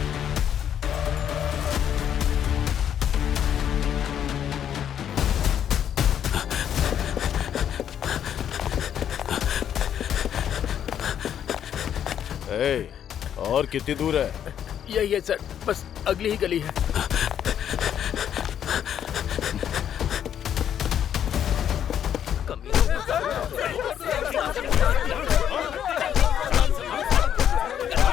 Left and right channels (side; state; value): right; quieter; 9.5 dB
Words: और कितनी दूर है? यही है सर, बस अगली ही गली है।